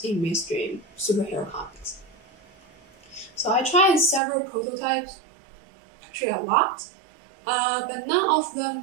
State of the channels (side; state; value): left; drops out; at 4.2 s